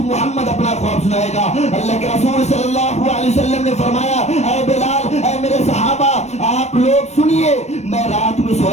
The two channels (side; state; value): right; late; 0.32 ms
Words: محمد اپنا خواب سنائے گا. اللہ کے رسول صلی اللہ علیہ وسلم نے فرمایا اے بلال, اے میرے صحابہ آپ لوگ سنیے, میں رات میں